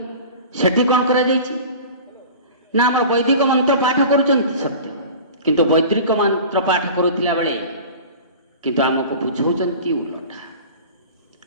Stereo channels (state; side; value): inverted; both; correlation -0.38